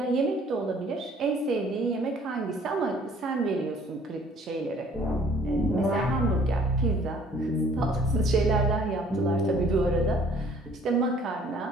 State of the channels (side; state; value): both; normal; correlation 0.57